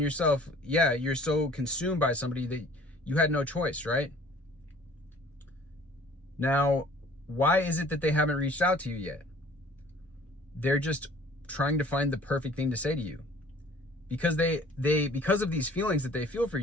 you're so consumed by somebody that you had no choice, right? Now, why is it that they haven't reached out to you yet? They're just trying to find the perfect thing to say to you. Because because of these feelings that they feel for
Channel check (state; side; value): normal; both; correlation 0.52